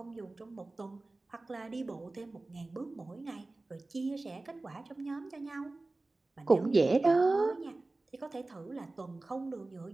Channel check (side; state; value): left; quieter; 3.1 dB